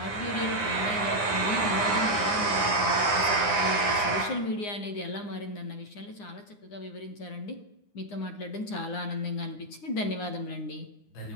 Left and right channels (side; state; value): right; late; 9.7 ms